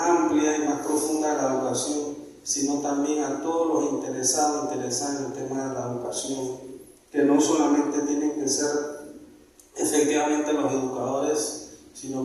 amplia y más profunda de la educación, sino también a todos los interesados en el tema de la educación, que no solamente tienen que ser efectivamente los educadores, sino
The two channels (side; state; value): both; identical; correlation 1.00